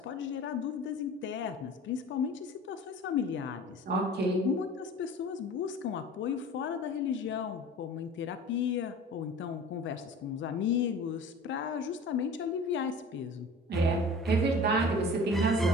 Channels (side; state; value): both; normal; correlation 0.41